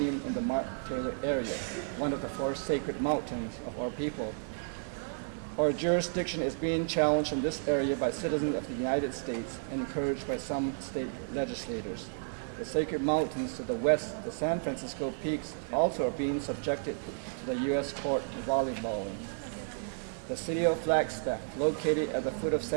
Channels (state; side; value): silent; left; digital silence